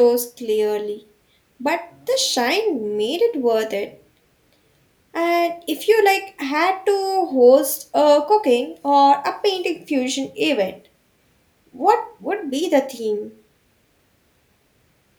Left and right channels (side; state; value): both; identical; correlation 1.00